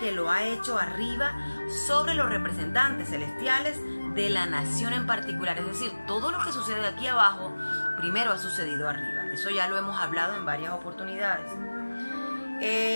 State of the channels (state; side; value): inverted; both; correlation -1.00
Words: lo ha hecho arriba sobre los representantes celestiales de la nación en particular. Es decir, todo lo que sucede aquí abajo, primero ha sucedido arriba. Eso ya lo hemos hablado en varias oportunidades.